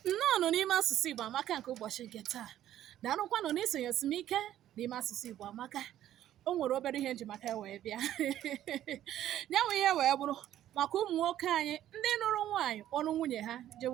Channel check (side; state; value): left; quieter; 12.2 dB